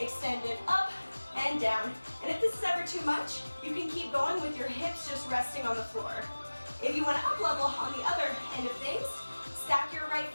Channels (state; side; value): inverted; both; correlation -1.00